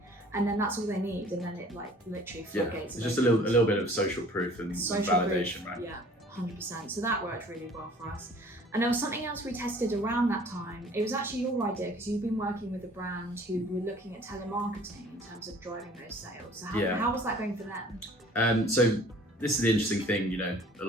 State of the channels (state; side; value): normal; both; correlation 0.51